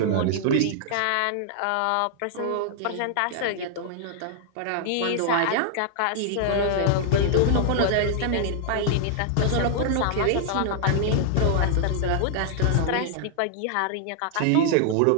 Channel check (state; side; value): different; both; correlation 0.00